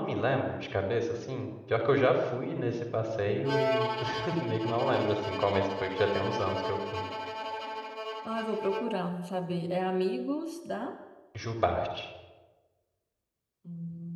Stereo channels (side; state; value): both; identical; correlation 1.00